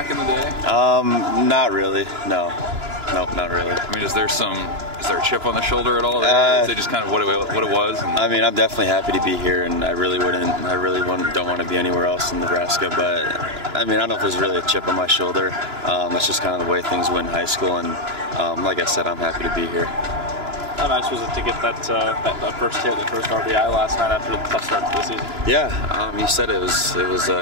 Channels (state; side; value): late; left; 2.9 ms